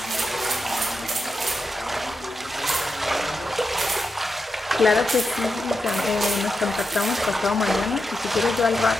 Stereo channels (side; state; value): both; normal; correlation 0.87